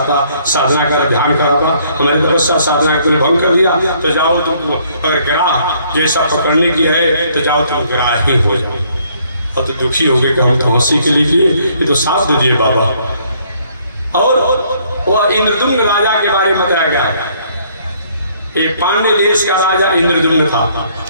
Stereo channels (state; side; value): inverted; both; correlation -0.64